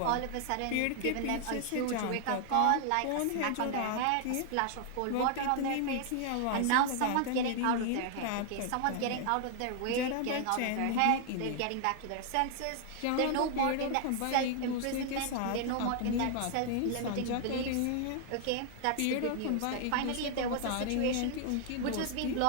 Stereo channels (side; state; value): both; different; correlation 0.00